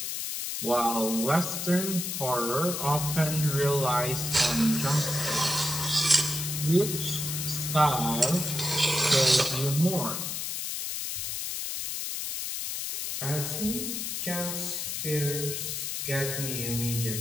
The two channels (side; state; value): left; noise; hiss, 3 dB below the sound